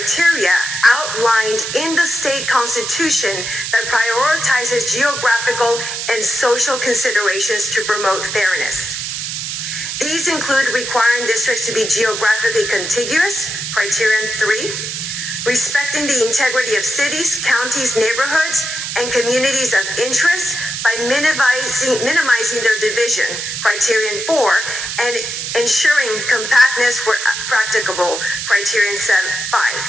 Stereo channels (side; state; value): right; noise; hiss, 5 dB below the sound